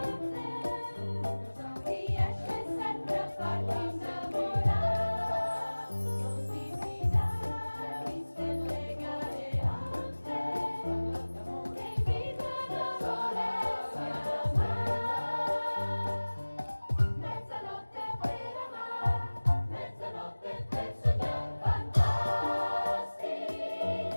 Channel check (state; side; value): inverted; both; correlation -1.00